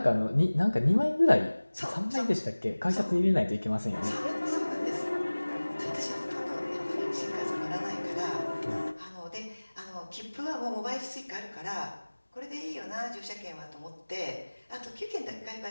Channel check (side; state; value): both; inverted; correlation -1.00